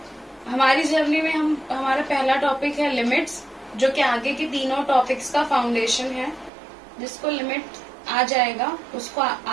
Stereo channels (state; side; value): drops out; left; at 6.5 s